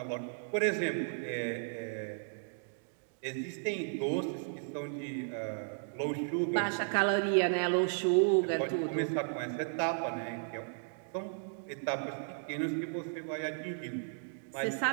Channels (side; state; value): left; silent; digital silence